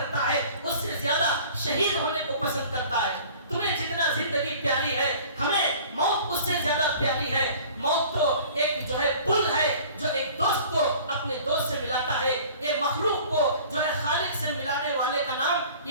ہے اس سے زیادہ شہید ہونے کو پسند کرتا ہے. تمہیں جتنا زندگی پیاری ہے ہمیں موت اس سے زیادہ پیاری ہے. موت تو ایک جو ہے پل ہے جو ایک دوست کو اپنے دوست سے ملاتا ہے. یہ مخلوق کو جو ہے خالق سے ملانے والے کا نام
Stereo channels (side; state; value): both; inverted; correlation -0.47